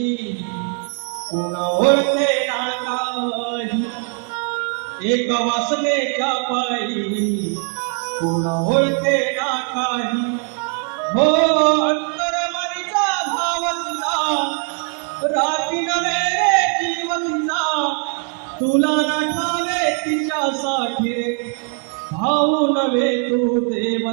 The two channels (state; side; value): quieter; left; 39.5 dB